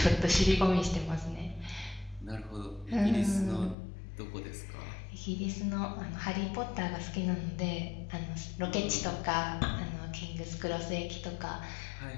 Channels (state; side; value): drops out; right; at 3.8 s